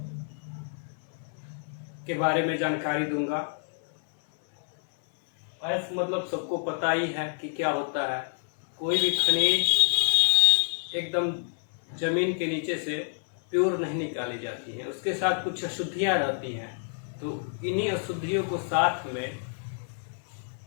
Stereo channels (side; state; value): right; silent; 59 dB below the other